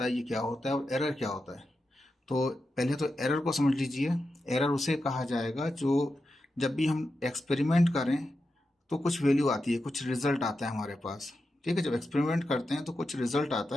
है ये क्या होता है और एरर क्या होता है। तो पहले तो एरर को समझ लीजिए। एरर उसे कहा जाएगा जो जब भी हम एक्सपेरिमेंट करें तो कुछ वैल्यू आती है, कुछ रिजल्ट आता है हमारे पास। ठीक है, जब एक्सपेरिमेंट करते हैं तो कुछ रिजल्ट आता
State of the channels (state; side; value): normal; both; correlation 0.89